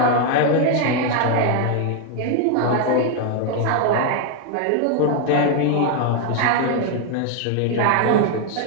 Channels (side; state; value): both; different; correlation 0.01